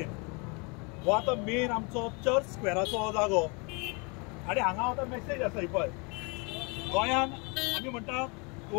हो आतां मेन आमचो चर्च स्क्वेराचो हो जागो. आनी हांगा आतां मेसेज आसा ही पळय, गोंयान आमी म्हणटा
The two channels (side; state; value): right; quieter; 31.4 dB